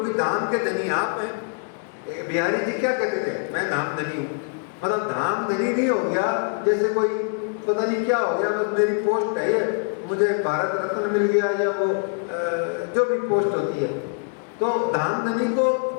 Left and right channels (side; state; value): right; silent; 59 dB below the other